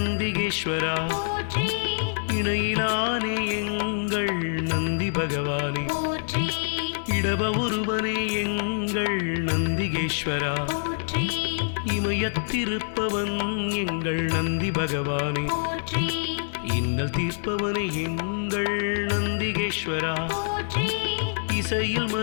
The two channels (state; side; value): silent; right; digital silence